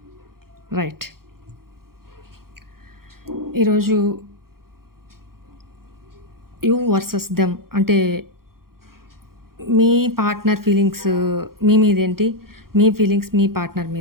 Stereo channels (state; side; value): late; left; 0.93 ms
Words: రైట్. ఈరోజు యూ వర్సెస్ దెమ్ అంటే మీ పార్ట్నర్ ఫీలింగ్స్ మీ మీదేంటి, మీ ఫీలింగ్స్ మీ పార్ట్నర్